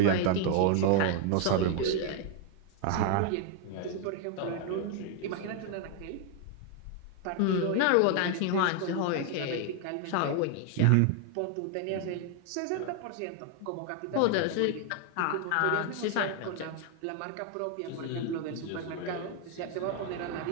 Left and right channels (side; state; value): both; different; correlation 0.00